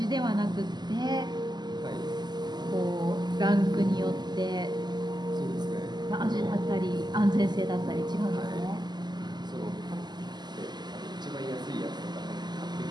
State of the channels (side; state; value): left; late; 0.21 ms